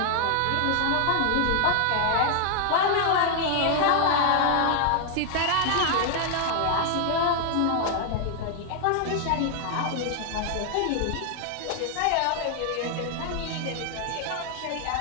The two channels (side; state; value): both; different; correlation 0.00